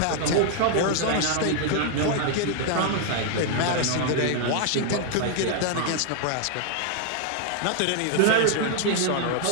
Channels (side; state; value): both; different; correlation 0.00